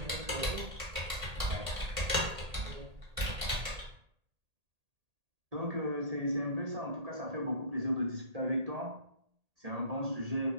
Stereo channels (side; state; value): left; late; 1.8 ms